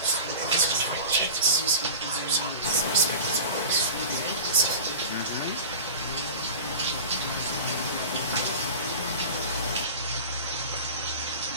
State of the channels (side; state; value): both; inverted; correlation -0.34